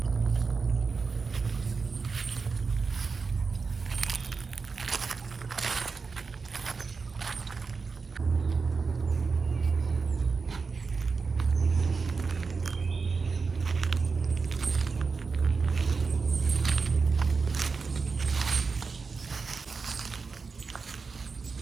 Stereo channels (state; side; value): quieter; left; 4.7 dB